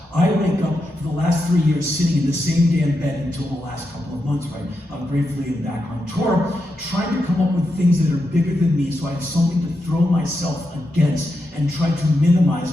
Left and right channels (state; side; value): normal; both; correlation 0.86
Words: I wake up for the last 3 years sitting in the same damn bed until the last couple of months, right? I'm gratefully back on tour, trying to come up with things that are bigger than me so I have something to throw myself against and try to minimize